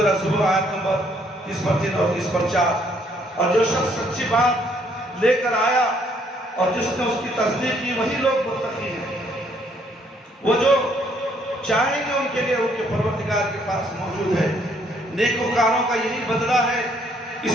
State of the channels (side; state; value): both; normal; correlation 0.67